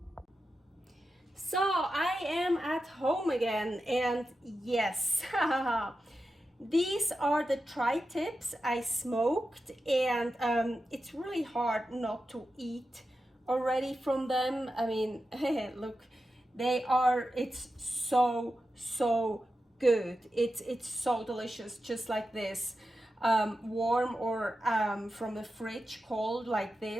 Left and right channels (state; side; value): normal; both; correlation 0.91